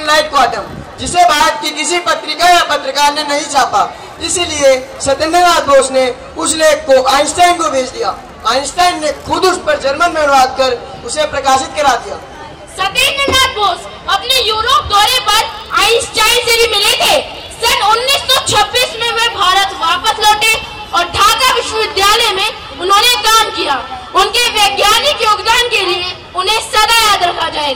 light quantum, जिसे भारत की किसी पत्रिका या पत्रकार ने नहीं छापा। इसीलिए सत्येंद्रनाथ बोस ने उस लेख को आइंस्टाइन को भेज दिया। आइंस्टाइन ने खुद उस पर जर्मन में अनुवाद कर उसे प्रकाशित करा दिया। सत्येंद्रनाथ बोस अपने यूरोप दौरे पर आइंस्टाइन से भी मिले थे। सन 1926 में वे भारत वापस लौटे और ढाका विश्वविद्यालय में उन्होंने काम किया। उनके वैज्ञानिक योगदान के लिए उन्हें सदा याद रखा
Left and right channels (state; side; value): identical; both; correlation 1.00